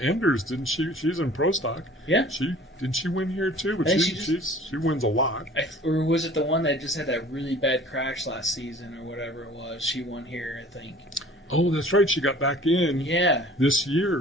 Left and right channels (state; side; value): normal; both; correlation 0.48